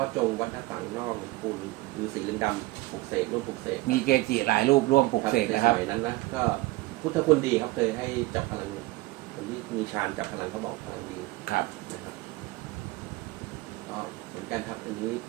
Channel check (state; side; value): quieter; left; 20.3 dB